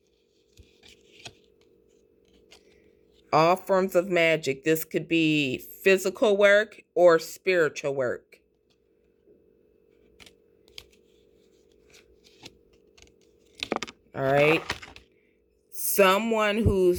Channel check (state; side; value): identical; both; correlation 1.00